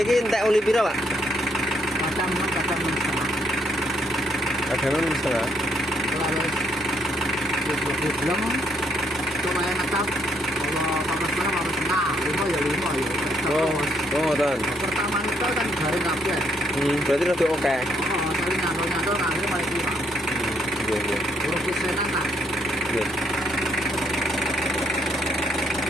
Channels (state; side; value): normal; both; correlation 0.72